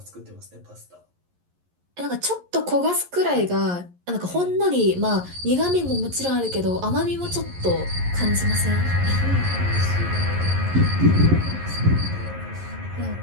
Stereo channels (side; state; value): left; late; 11 ms